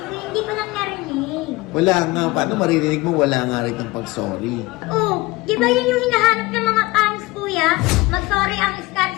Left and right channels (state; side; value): quieter; right; 21.3 dB